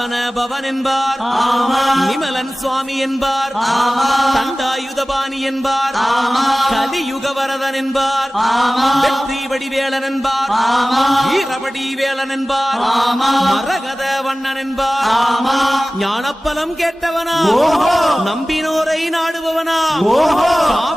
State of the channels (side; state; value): both; normal; correlation 0.97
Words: பவன் என்பார், நிமலன் சுவாமி என்பார், தண்டாயுதபாணி என்பார், கலியுக வரதன் என்பார், வெற்றி வடிவேலன் என்பார், வீரபடி வேலன் என்பார், மரகத வண்ணன் என்பார், ஞானப்பலம் கேட்டவனா, நம்பினோரை நாடுபவனா,